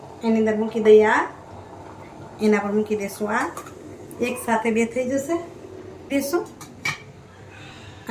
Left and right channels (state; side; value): identical; both; correlation 1.00